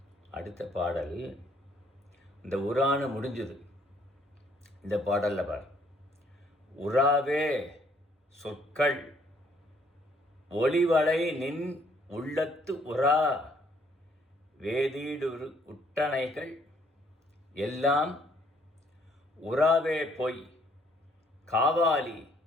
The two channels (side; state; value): both; normal; correlation 0.65